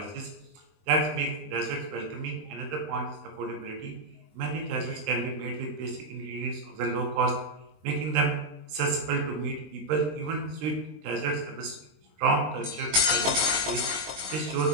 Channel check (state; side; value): late; left; 20 ms